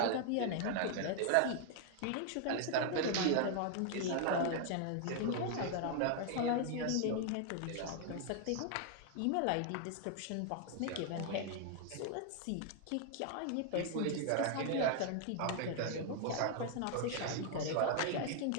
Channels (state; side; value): different; both; correlation 0.00